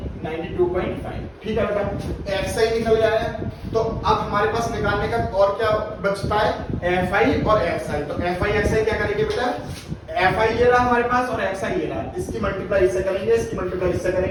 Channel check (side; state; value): both; identical; correlation 1.00